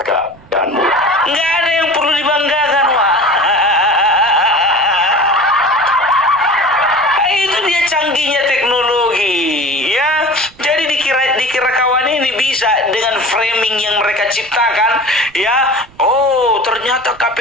tegak dan mudah. Nggak ada yang perlu dibanggakan, Wak. ini bisa dengan framing yang mereka ciptakan, ya. Oh, ternyata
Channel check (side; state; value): right; noise; rumble, 25 dB below the sound